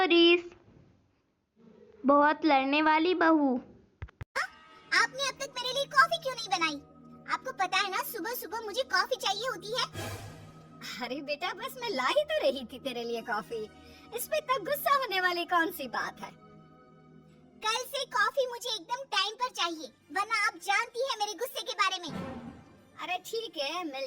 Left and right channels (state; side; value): identical; both; correlation 1.00